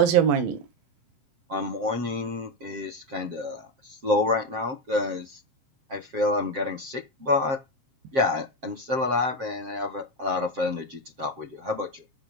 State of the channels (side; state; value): left; late; 7.5 ms